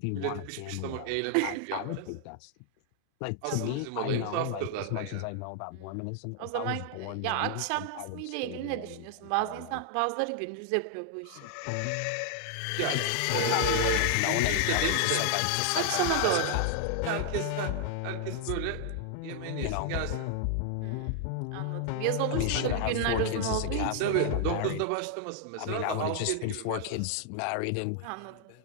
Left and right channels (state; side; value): different; both; correlation 0.00